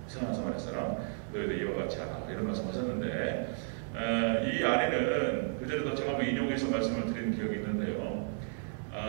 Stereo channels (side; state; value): left; silent; 56 dB below the other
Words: 선한 사마리아 사람, 너희도 이와 같이 하라. 이런 말씀하셨는데 이 안에는 그전에도 제가 한번 인용해서 말씀을 드린 기억이 있는데요.